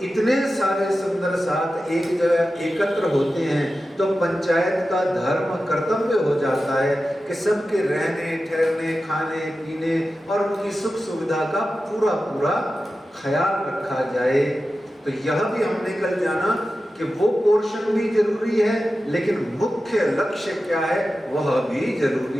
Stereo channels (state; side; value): normal; both; correlation 0.93